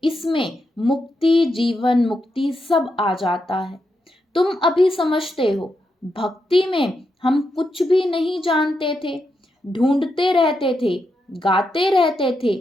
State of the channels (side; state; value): both; normal; correlation 0.84